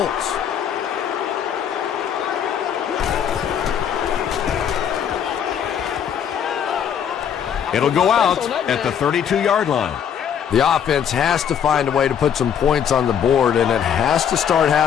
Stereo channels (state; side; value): quieter; right; 8.5 dB